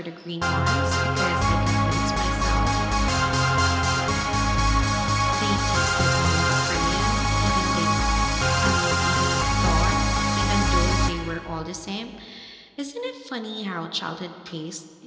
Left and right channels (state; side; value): identical; both; correlation 1.00